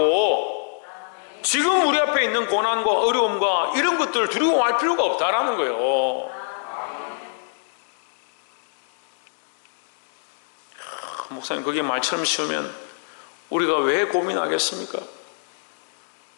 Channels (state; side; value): silent; right; digital silence